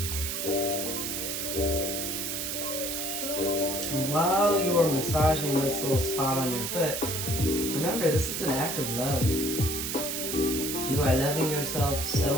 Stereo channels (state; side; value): noise; right; hiss, 2 dB below the sound